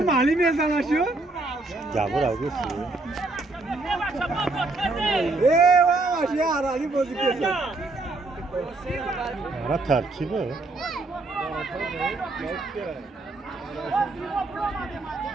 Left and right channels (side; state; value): left; quieter; 3.2 dB